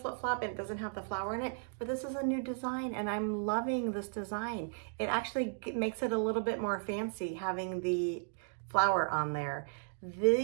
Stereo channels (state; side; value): silent; left; digital silence